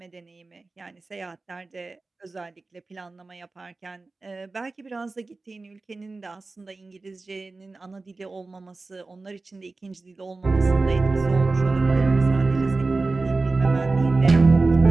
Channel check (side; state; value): left; quieter; 3.5 dB